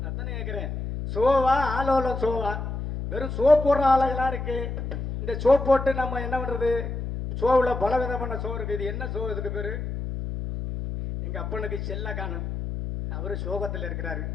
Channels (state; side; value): noise; left; hum, 5 dB below the sound